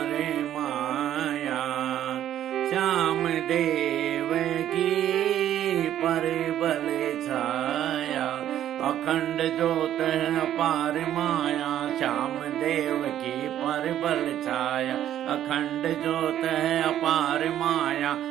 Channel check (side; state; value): left; quieter; 11.4 dB